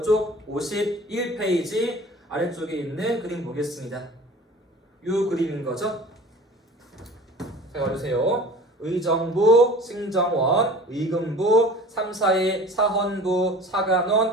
51페이지 아래쪽에 있는 그림 보겠습니다. 이 그림인 거죠. 잘 봐주세요. 의정부, 승정원, 의금부, 3, 4의 사헌부,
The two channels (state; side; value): normal; both; correlation 0.42